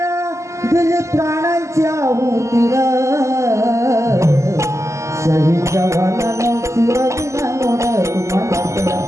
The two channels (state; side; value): late; left; 0.14 ms